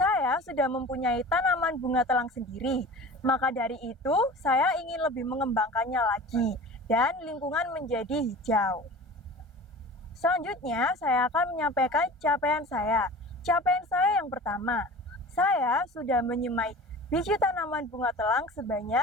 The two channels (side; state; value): both; normal; correlation 0.38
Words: sudah mempunyai tanaman bunga telang sendiri, maka dari itu saya ingin lebih mengembangkannya lagi dan lingkungan menjadi hijau. Selanjutnya, saya akan menyampaikan capaian saya. Capaian saya yang pertama, saya sudah menyemai biji tanaman bunga telang